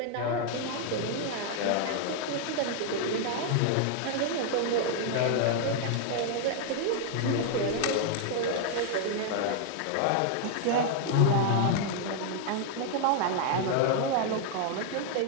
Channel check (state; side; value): different; both; correlation 0.00